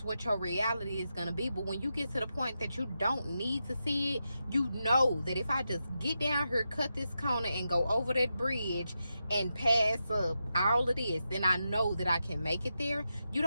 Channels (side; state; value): both; inverted; correlation -0.88